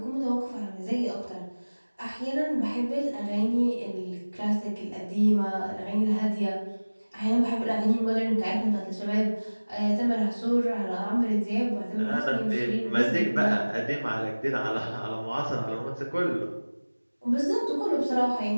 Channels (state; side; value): inverted; both; correlation -1.00